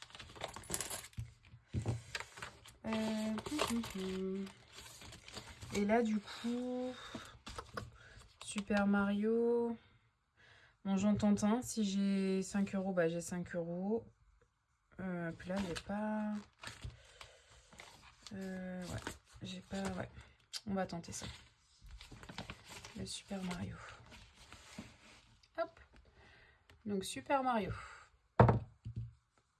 Et là du coup, Super Mario. Bon, j'en tente un. Si j'ai 5 euros, bah j'ai 5 euros. Puis là, j'ai pas... ouais, j'ai pas... Ouais. On va tenter ça. Le Super Mario. Hop. Donc, Super Mario.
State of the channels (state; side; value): identical; both; correlation 1.00